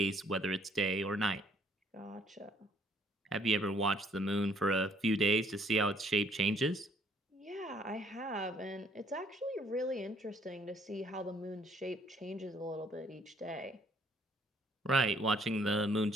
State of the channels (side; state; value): both; normal; correlation 0.63